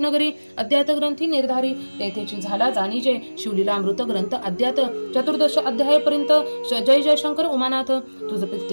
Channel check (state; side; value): inverted; both; correlation -1.00